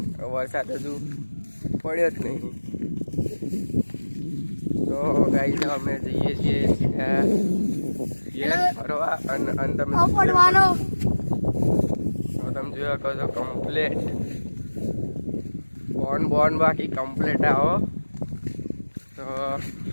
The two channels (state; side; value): inverted; both; correlation -1.00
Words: વરસાદ હજુ પડ્યો જ નહીં. તો ગાઈસ અમે જઈએ છીએ સીધા ઘેર ફરવા. અને તમે જોયા કહો છો કમ્પ્લેટ બોન બાકી કમ્પ્લેટ આવો. તો